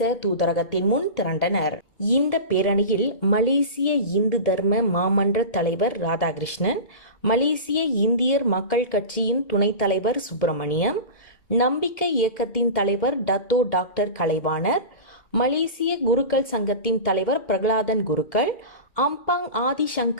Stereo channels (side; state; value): right; late; 2.1 ms